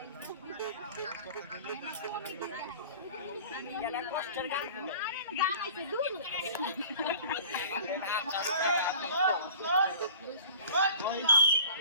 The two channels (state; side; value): inverted; both; correlation -0.44